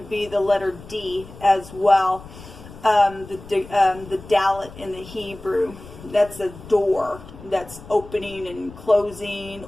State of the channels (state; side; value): noise; left; rumble, 17 dB below the sound